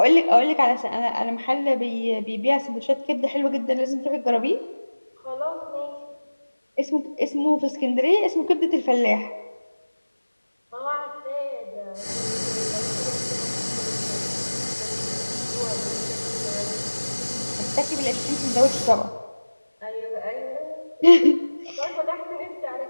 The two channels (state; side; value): inverted; both; correlation -1.00